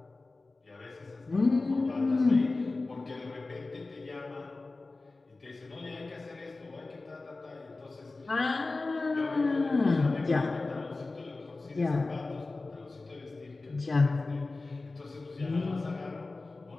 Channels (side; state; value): right; quieter; 3.4 dB